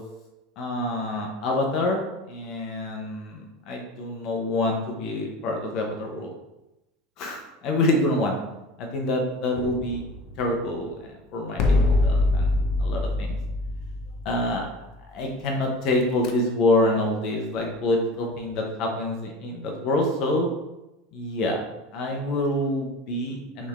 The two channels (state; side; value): normal; both; correlation 0.37